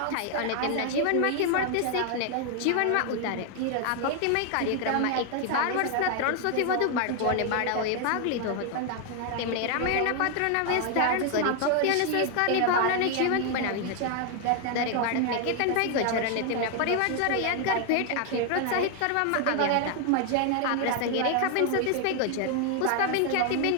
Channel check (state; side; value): different; both; correlation 0.00